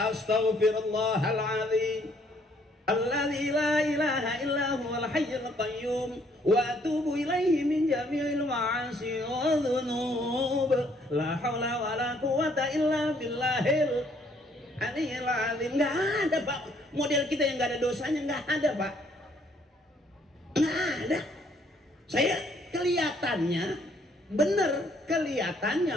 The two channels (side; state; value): both; normal; correlation 0.66